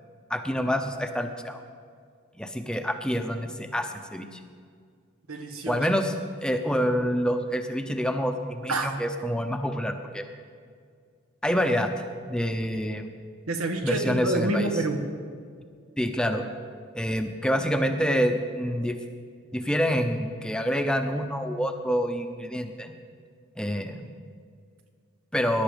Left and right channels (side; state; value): both; normal; correlation 0.75